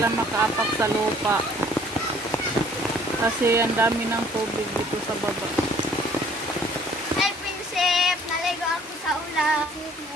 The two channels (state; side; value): normal; both; correlation 0.57